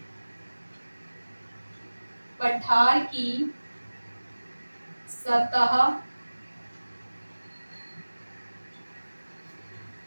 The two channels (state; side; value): inverted; both; correlation -1.00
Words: पठार की सतह